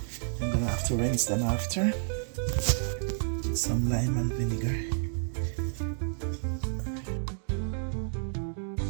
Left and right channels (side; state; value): left; silent; digital silence